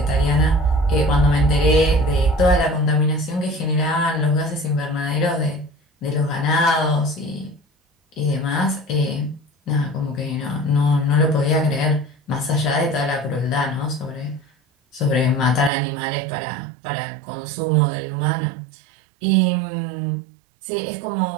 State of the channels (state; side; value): drops out; left; at 15.7 s